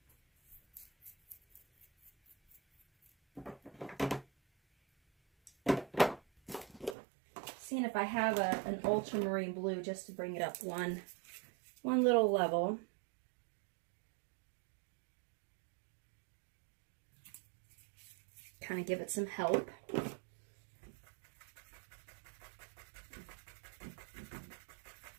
Seeing if I have an ultramarine blue just to bring it up one little level. Kind of give it some help.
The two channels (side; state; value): left; drops out; at 7.0 s